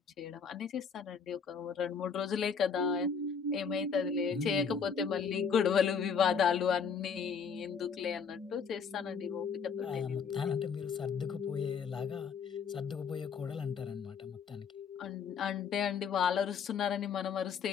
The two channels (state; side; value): quieter; right; 6.1 dB